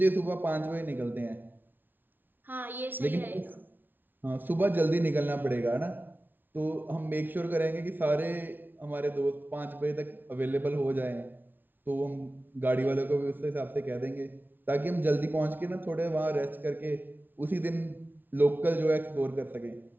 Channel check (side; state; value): left; late; 0.091 ms